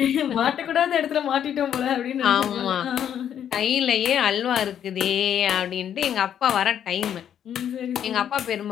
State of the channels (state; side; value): quieter; right; 9.5 dB